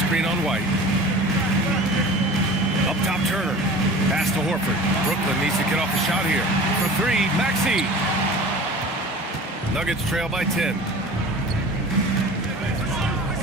screen on White. Up top, Turner. Pass to Horford. Brooklyn needs to get off the shot here. For 3, Maxey. Nuggets trail by 10.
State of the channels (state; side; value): normal; both; correlation 0.40